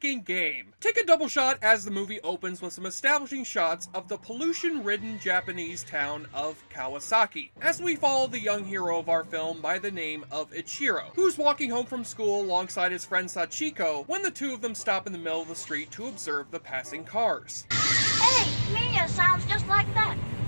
game. Take a double shot as the movie opens with some establishing shots of the pollution-ridden Japanese town of Kawasaki, as we follow the young hero of our film by the name of Ichiro, who's walking home from school alongside his friend Sachiko when the two of them stop in the middle of the street to observe the passing cars. Hey, Minya sounds just like that.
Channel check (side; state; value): both; inverted; correlation -1.00